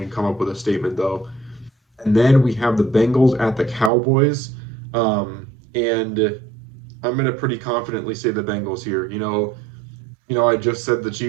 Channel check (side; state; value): left; drops out; at 3.9 s